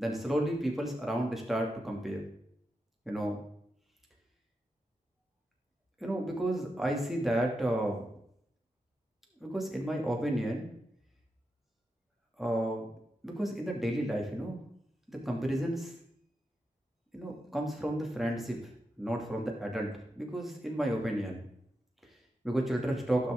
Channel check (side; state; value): both; normal; correlation 0.87